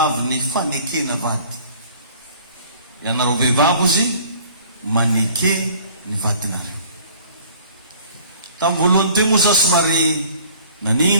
ny fanekena vady. Ianareo vehivavy izy maneke ny vadinareo. Tamin'ny voalohany teo moa za somary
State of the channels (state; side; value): inverted; both; correlation -0.52